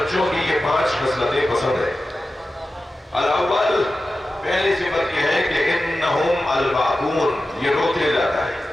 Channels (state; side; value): normal; both; correlation 0.93